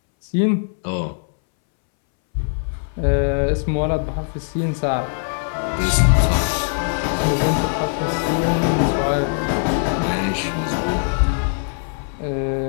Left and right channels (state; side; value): silent; right; 64 dB below the other